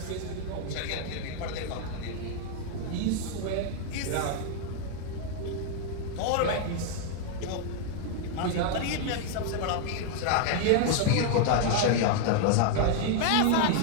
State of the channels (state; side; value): different; both; correlation 0.00